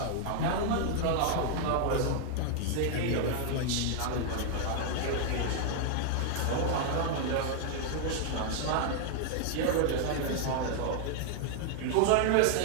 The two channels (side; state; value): both; different; correlation 0.00